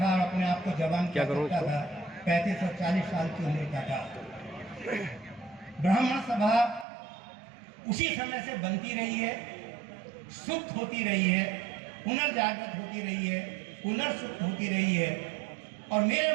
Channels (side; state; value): left; drops out; at 6.9 s